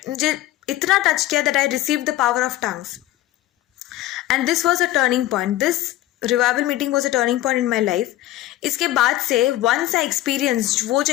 मुझे इतना टच किया that I received the power of tongues. And this was a turning point. This revival meeting was a turning point in my life. इसके बाद से वंस आई एक्सपीरियंस, वो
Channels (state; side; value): quieter; right; 15.4 dB